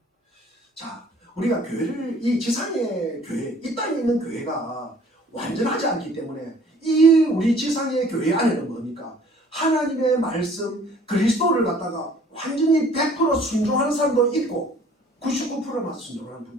자, 우리가 교회를 이 지상의 교회, 이 땅에 있는 교회가 완전하지 않기 때문에 이 우리 지상의 교회 안에는 뭡니까? 하나님의 말씀 그리스도를 갖다가 완전히 100% 순종하는 사람도 있고 99%만 순종하는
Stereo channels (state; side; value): normal; both; correlation 0.54